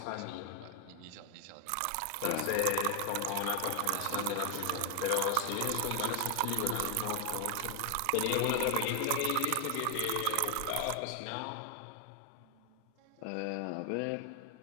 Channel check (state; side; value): different; both; correlation 0.00